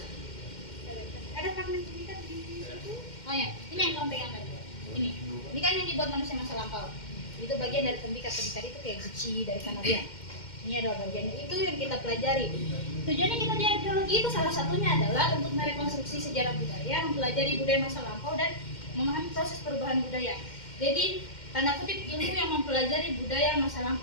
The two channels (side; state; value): right; late; 2.1 ms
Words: Ada fragmen tembikar di situ. Oh ya, ini yang kamu pegang tadi. Ini kan yang dibuat manusia masa lampau. Itu bagian dari tembikar itu kayak guci dari Kanarian. Ini adalah bagiannya, itu yang kita pelajari. Tujuannya kita di arkeologi itu salah satunya adalah untuk merekonstruksi sejarah budaya, mempelajari budaya masa lampau dan memahami proses perubahan budaya. Jadi tanda kutip ilmu yang mempelajari budaya masa